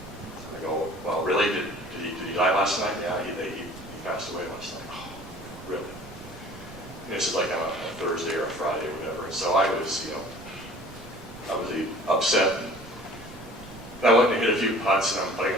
last night? Yeah, he passed away last night. Oh, really? And this is like on a Thursday or a Friday or whatever. And so I was, upset. And I went and hit a few putts, and I'm putting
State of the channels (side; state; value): right; noise; rumble, 18 dB below the sound